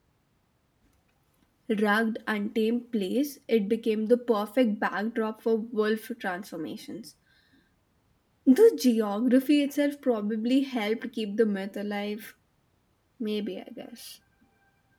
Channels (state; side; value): identical; both; correlation 1.00